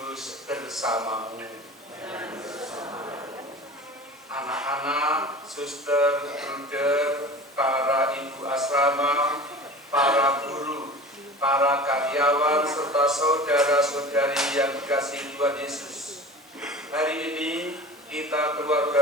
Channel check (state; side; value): normal; both; correlation 0.37